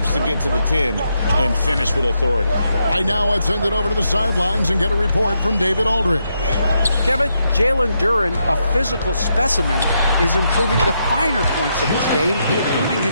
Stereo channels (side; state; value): both; inverted; correlation -0.80